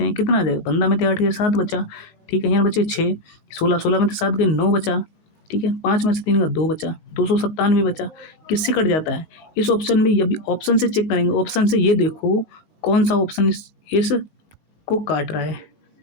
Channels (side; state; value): right; late; 20 ms